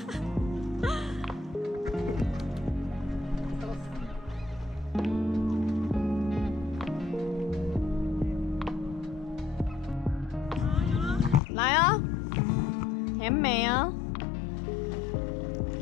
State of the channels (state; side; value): drops out; right; at 11.4 s